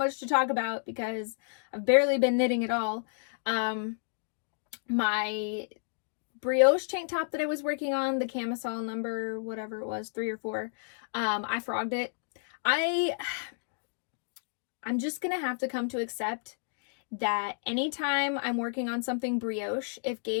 to talk about because I've barely been knitting at all. My brioche tank top that I was working on, the camisole number, whatever it was, 3 or 4, I frogged it. I'm just gonna have to come to accept that anytime I'm working on something brioche, if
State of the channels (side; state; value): right; silent; digital silence